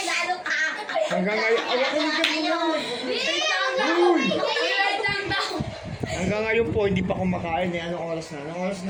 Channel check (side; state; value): both; identical; correlation 1.00